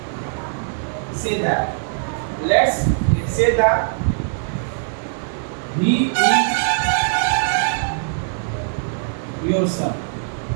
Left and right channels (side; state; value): left; silent; digital silence